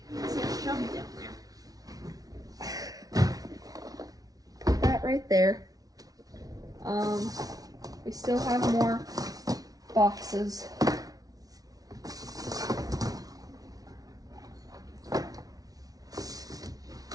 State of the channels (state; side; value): late; left; 0.18 ms